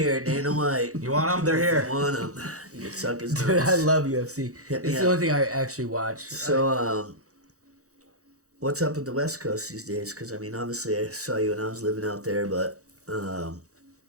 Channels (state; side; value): late; left; 0.65 ms